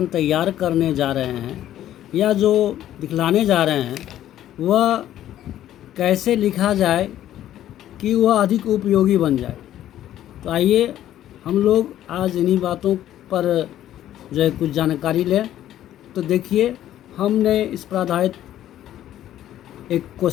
तैयार करने जा रहे हैं या जो दिखलाने जा रहे हैं वह कैसे लिखा जाए कि वह अधिक उपयोगी बन जाए। तो आइए हम लोग आज इन्हीं बातों पर जो है कुछ जानकारी लें। तो देखिए, हमने इस पर आधारित एक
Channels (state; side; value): quieter; right; 12.3 dB